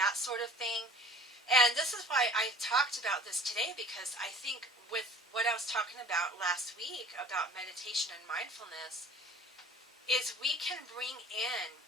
sort of thing. And this is why I talked about this today, because I think with what I was talking about last week about meditation and mindfulness is we can bring in,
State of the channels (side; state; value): both; normal; correlation 0.46